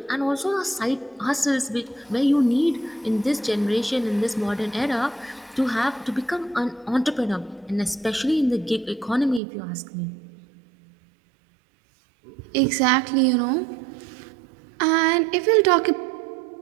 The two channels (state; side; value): drops out; left; at 9.4 s